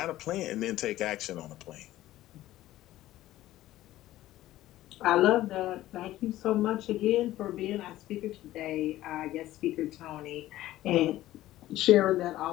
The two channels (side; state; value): right; quieter; 15.0 dB